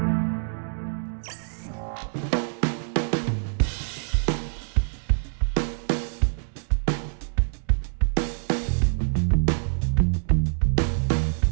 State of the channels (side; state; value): left; silent; digital silence